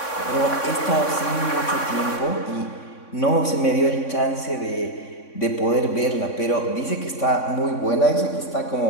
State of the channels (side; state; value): right; late; 3.6 ms